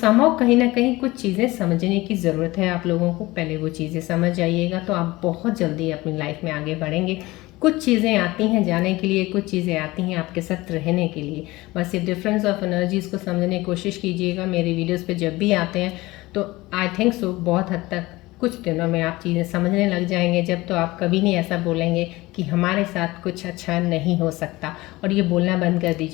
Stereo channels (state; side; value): quieter; right; 20.0 dB